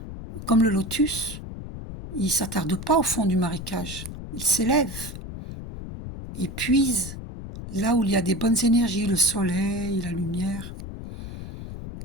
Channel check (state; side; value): noise; left; rumble, 10 dB below the sound